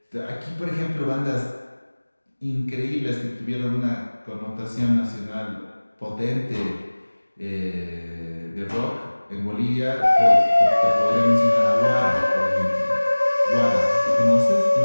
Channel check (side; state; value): both; inverted; correlation -1.00